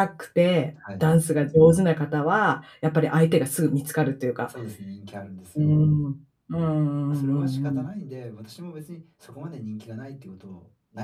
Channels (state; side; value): identical; both; correlation 1.00